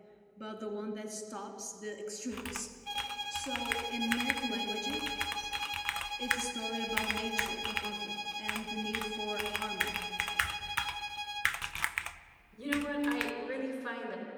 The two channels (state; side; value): identical; both; correlation 1.00